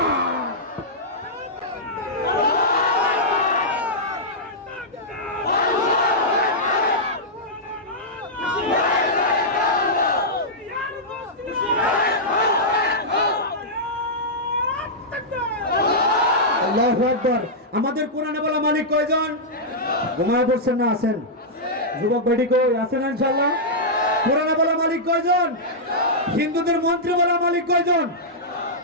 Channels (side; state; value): both; normal; correlation -0.10